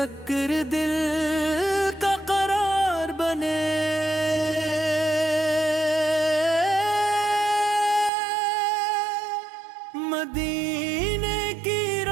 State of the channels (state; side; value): drops out; left; at 8.1 s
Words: دل کا قرار بنے، مدینے کی